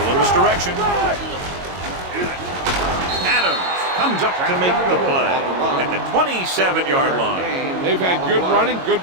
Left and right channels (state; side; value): late; left; 22 ms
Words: Little misdirection. Adams comes up to make the play at the 27-yard line. They've had good running, good